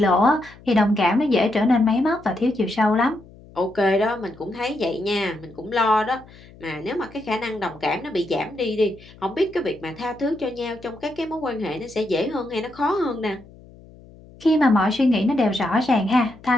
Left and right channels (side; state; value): left; noise; hum, 22 dB below the sound